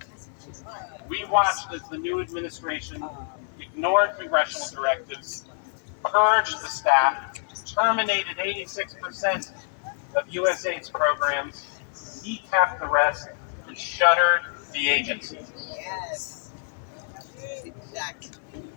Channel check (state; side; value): silent; right; 60 dB below the other